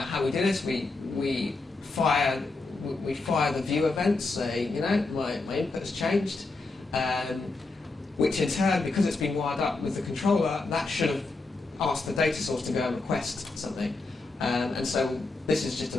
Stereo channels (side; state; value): right; quieter; 3.5 dB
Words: we did this, we fire the view event, say, you know, my input has changed, which in turn, because it's been wired up with the controller, that should have asked the data source to go and request something. And so this is just a